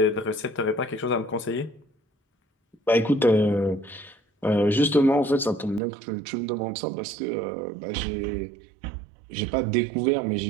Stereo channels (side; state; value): left; drops out; at 5.8 s